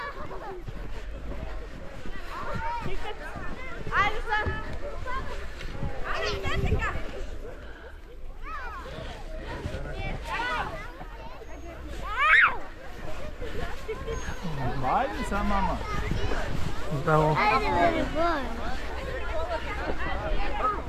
Ajde sa mama. Браво.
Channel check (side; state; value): both; identical; correlation 1.00